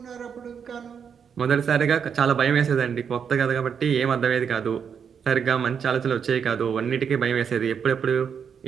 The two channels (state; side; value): quieter; left; 7.2 dB